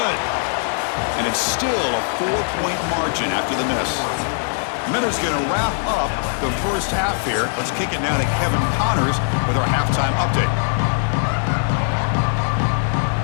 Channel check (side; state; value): right; silent; digital silence